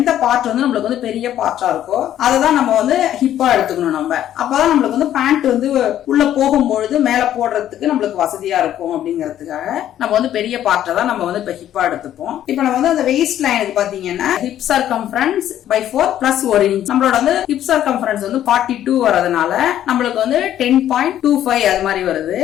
பார்ட் நம்மளுக்கு பெரிய பார்ட்டா இருக்கோ அதை தான் நம்ம ஹிப்பா எடுத்துக்கணும். நம்ம அப்பதான் நம்மளுக்கு பேண்ட் உள்ள போகும்பொழுது மேல போடுறதுக்கு நம்மளுக்கு வசதியா இருக்கும். அப்படிங்கிறதுக்காக நம்ம பெரிய பார்ட்டை தான் நம்ம இப்ப ஹிப்பா எடுத்துப்போம். இப்ப நம்ம அந்த வெயிஸ்ட் லைனுக்கு பாத்தீங்கன்னா hip circumference by 4 plus 1 inch நம்மளோட ஹிப் சர்க்கம்ஃபரன்ஸ் 42 வரதுனால நம்மளுக்கு 10.25 அது மாதிரி வருது.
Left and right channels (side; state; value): right; quieter; 11.5 dB